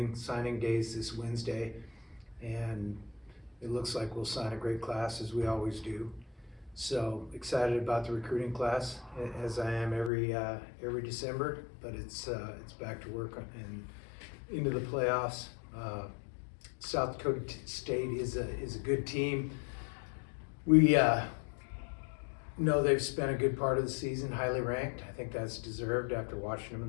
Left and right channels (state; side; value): drops out; right; at 10.1 s